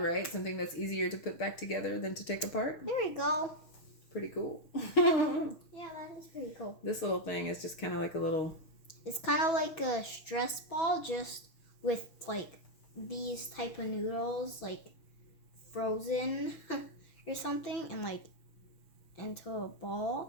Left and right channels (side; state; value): right; late; 6.3 ms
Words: Something that's easier to put back together than to take apart. There we go. Pretty cool. Yeah, that is pretty cool. This little thing is just kind of like a little... It's kind of like a stress ball, just with like these type of noodles, like frozen or something, and like into a